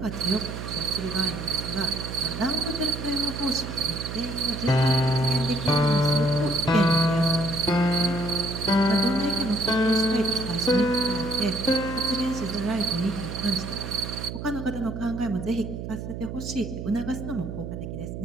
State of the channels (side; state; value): right; noise; hum, 7 dB below the sound